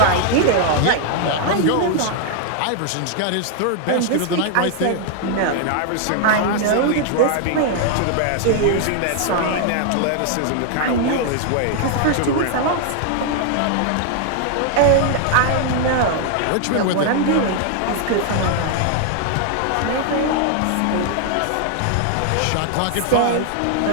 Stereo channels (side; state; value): both; different; correlation 0.00